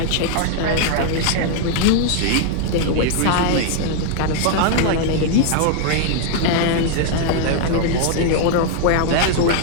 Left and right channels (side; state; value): both; different; correlation 0.00